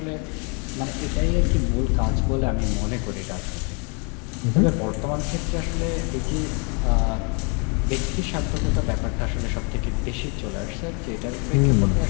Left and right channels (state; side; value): quieter; right; 34.9 dB